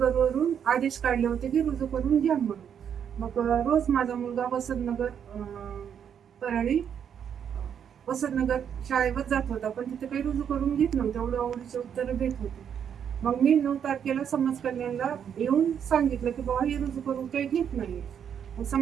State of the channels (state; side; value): quieter; left; 8.3 dB